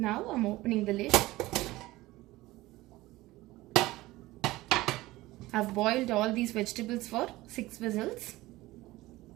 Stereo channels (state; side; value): quieter; left; 18.5 dB